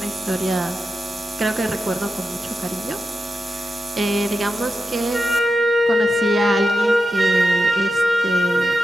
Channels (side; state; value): both; normal; correlation 0.90